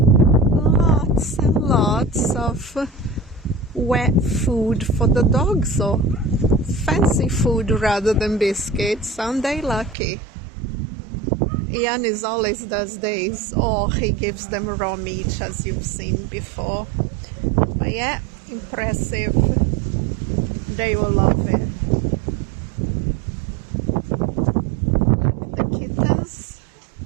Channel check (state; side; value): drops out; left; at 10.0 s